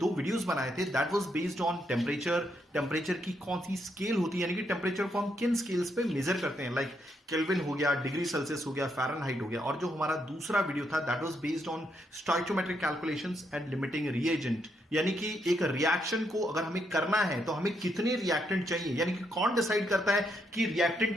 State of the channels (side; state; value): both; normal; correlation 0.77